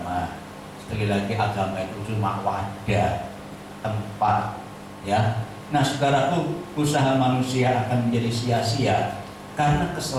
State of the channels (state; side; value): identical; both; correlation 1.00